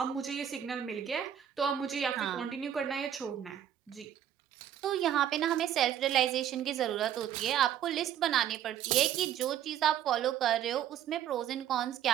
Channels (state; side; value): quieter; left; 10.2 dB